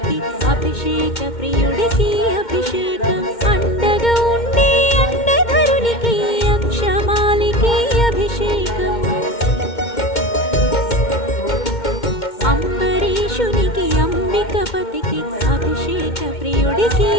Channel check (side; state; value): right; late; 2.1 ms